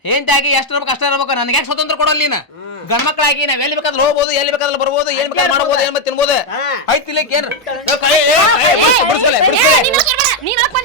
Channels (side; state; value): both; normal; correlation 0.03